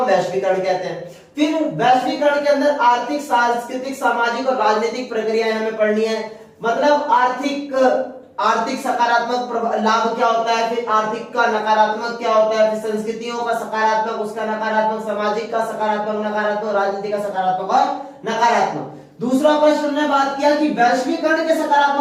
वैश्वीकरण कहते हैं। फिर वैश्वीकरण के अंदर आर्थिक, सांस्कृतिक, सामाजिक और राजनीतिक प्रक्रियाएं हमें पढ़नी है। मतलब आर्थिक सकारात्मक लाभ क्या होता है, फिर आर्थिक का नकारात्मक क्या होता है, फिर संस्कृतियों का सकारात्मक, उसका नकारात्मक, सामाजिक का सकारात्मक, नकारात्मक, राजनीति का सकारात्मक और नकारात्मक। दूसरा प्रश्न हमने बात किया कि वैश्वीकरण के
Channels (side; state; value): both; identical; correlation 1.00